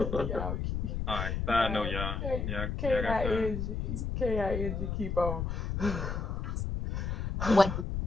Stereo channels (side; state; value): left; noise; rumble, 2 dB below the sound